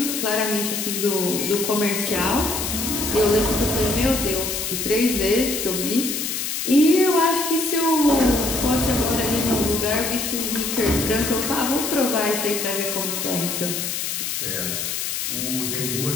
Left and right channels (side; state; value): left; noise; hiss, 2 dB below the sound